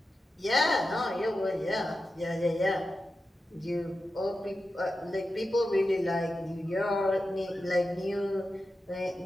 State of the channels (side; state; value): both; normal; correlation 0.91